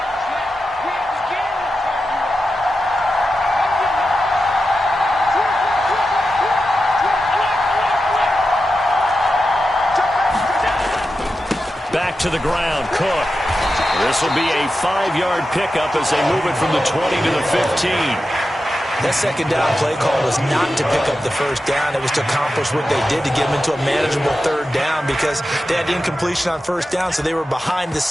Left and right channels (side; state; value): both; normal; correlation 0.91